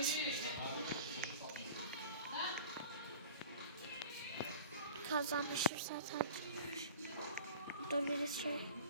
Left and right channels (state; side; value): inverted; both; correlation -0.42